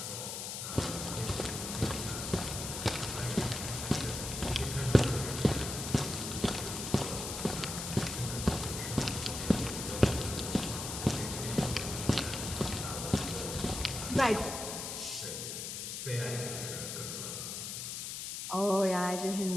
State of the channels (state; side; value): noise; left; hiss, 5 dB below the sound